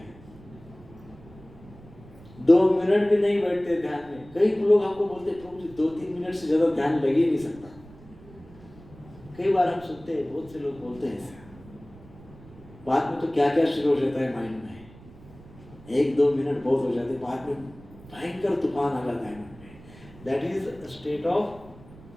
2 मिनट भी नहीं बैठते ध्यान में। कई लोग हमको बोलते हैं प्रभु जी 2-3 मिनट से ज्यादा ध्यान लग ही नहीं सकता। कई बार हम सुनते हैं, बहुत से लोग बोलते हैं ऐसा। बाद में तो क्या क्या शुरू हो जाता है माइंड में, 1-2 मिनट बहुत हो जाते हैं, बाद में भयंकर तूफान आ जाता है मन में। दैट इज स्टेट ऑफ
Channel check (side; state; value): right; noise; rumble, 21 dB below the sound